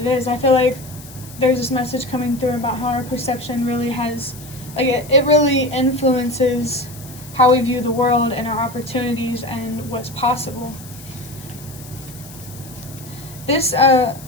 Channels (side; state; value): left; noise; hiss, 18 dB below the sound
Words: is. I feel like there's this message coming through about how our perception really has, it really influences how we view the world and our opportunities and what's possible. This